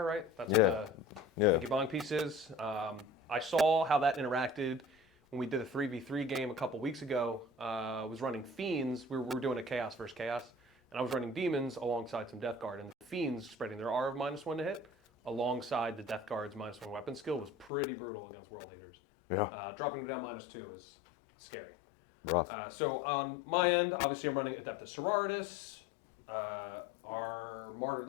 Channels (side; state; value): right; drops out; at 17.7 s